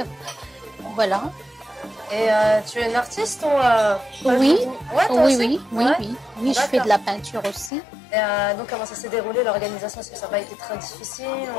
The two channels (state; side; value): drops out; right; at 7.7 s